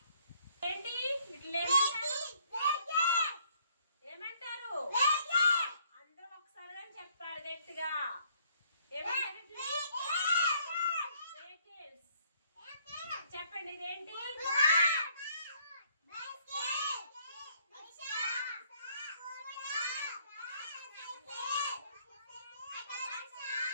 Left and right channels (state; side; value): inverted; both; correlation -0.64